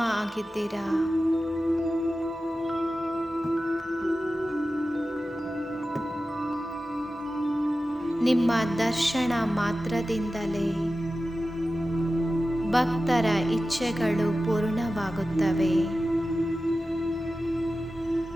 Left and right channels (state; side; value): normal; both; correlation 0.94